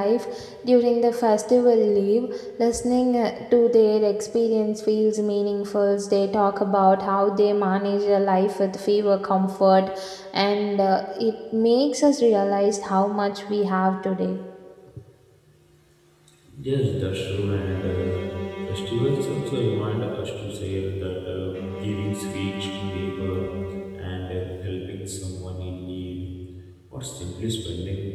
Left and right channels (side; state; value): both; identical; correlation 1.00